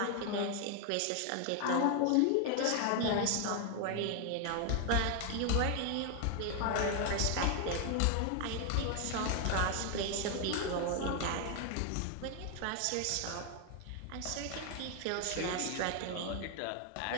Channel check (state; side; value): different; both; correlation 0.00